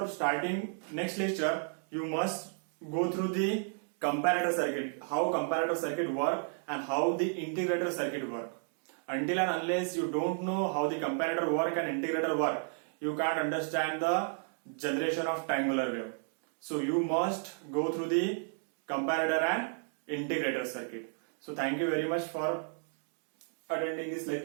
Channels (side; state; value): left; silent; 56 dB below the other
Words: starting next lecture, you must go through the comparator circuit, how comparator circuit work and how the integrator circuit work. Until and unless you don't know how the comparator work and integrator work, you can't understand the generation of triangular wave. So you must go through the comparator and integrator circuit. So thank you very much for attending this